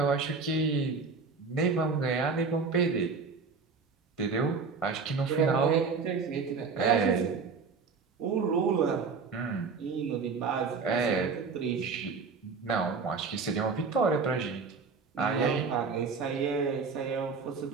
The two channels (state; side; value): quieter; left; 4.9 dB